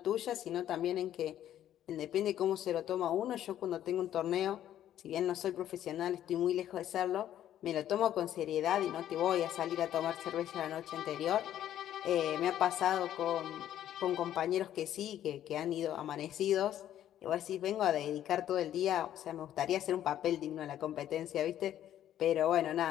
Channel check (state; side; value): quieter; right; 11.5 dB